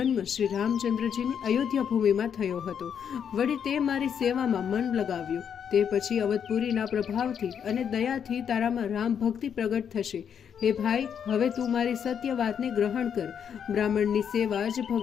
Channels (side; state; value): right; quieter; 7.9 dB